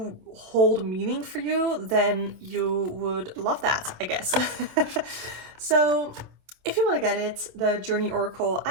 hold meaning for you, then you would love that, I guess. So if you want to get it, the Journey Oracle,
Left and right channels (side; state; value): left; late; 27 ms